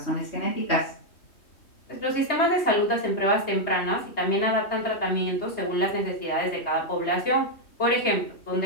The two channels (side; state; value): right; late; 3.2 ms